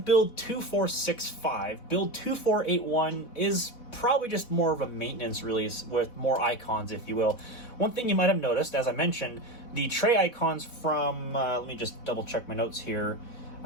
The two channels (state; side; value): late; right; 4.1 ms